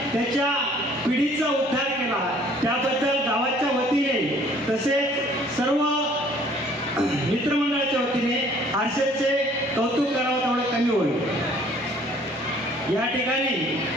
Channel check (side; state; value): both; normal; correlation 0.57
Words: त्याच्या पिढीचा उद्धार केला. त्याबद्दल गावाच्या वतीने तसेच सर्व मित्रमंडळाच्या वतीने हर्षलचे कौतुक करावं तेवढं कमी होईल. या ठिकाणी